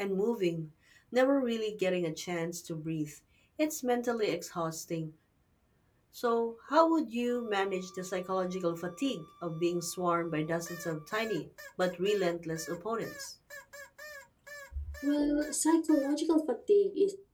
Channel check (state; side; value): identical; both; correlation 1.00